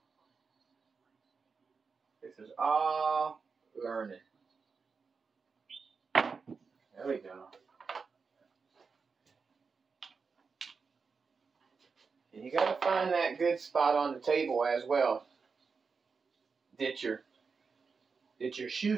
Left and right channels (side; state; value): left; quieter; 5.1 dB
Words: This is all learning. There we go. And you got to find that good spot on the table as well that you're